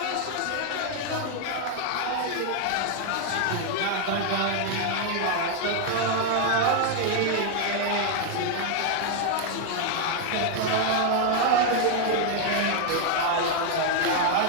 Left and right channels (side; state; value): both; different; correlation 0.00